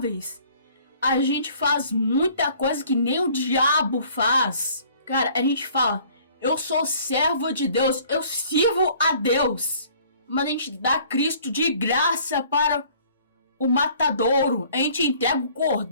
A gente faz muita coisa que nem o diabo faz. Cara, a gente fala, eu sou servo de Deus, eu sirvo a Deus. Mas a gente dá Cristo de graça para o matadouro. A gente entrega o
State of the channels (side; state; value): both; inverted; correlation -0.55